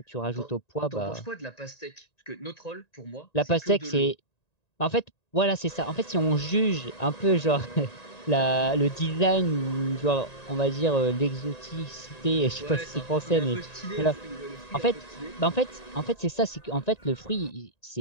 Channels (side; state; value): right; late; 1.9 ms